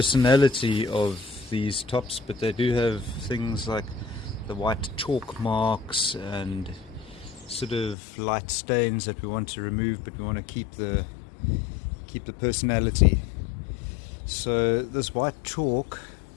of these tops, but they do have things like the white chalk marks and sort of light stains that we want to remove, but we want to keep the personality. So this white chalk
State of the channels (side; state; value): right; drops out; at 8.0 s